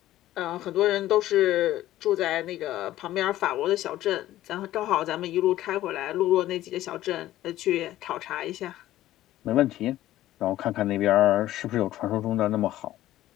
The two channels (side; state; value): right; quieter; 14.4 dB